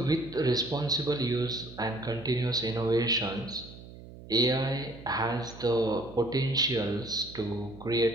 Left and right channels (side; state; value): right; noise; hum, 16 dB below the sound